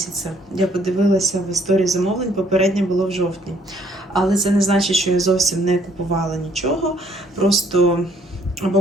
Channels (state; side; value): normal; both; correlation 0.64